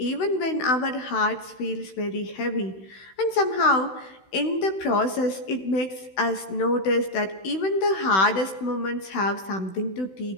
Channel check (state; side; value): late; right; 16 ms